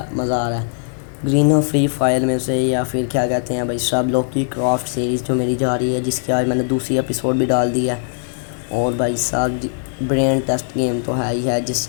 مزہ آ رہا ہے؟ گرین اور فری فائر میں سے, یا پھر کیا کہتے ہیں بھائی صاحب لوکی کرافٹ سیریز جو میری جا رہی ہے, جس کی آج میں نے دوسری ایپیسوڈ بھی ڈال دی ہے. اور بھائی صاحب برین ٹیسٹ گیم تو ہے ہی ہے, جس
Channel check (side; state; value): right; silent; digital silence